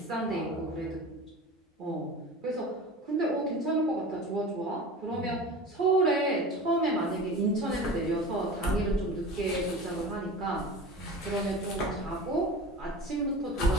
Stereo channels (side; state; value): both; normal; correlation 0.34